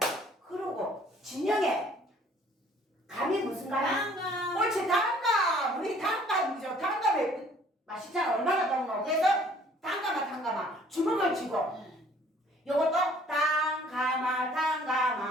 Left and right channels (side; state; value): both; normal; correlation 0.57